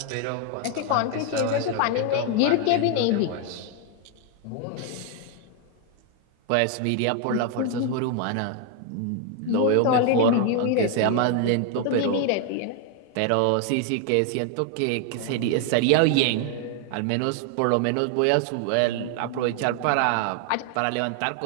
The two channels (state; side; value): different; both; correlation 0.01